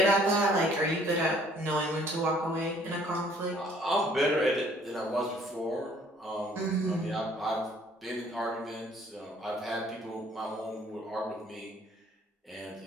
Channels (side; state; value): both; normal; correlation 0.59